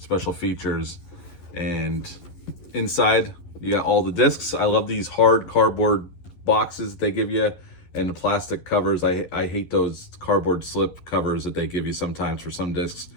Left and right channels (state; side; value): late; right; 11 ms